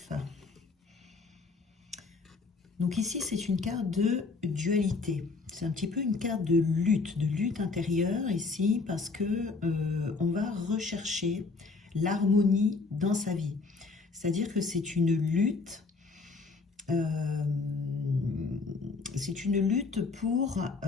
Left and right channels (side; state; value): right; quieter; 4.1 dB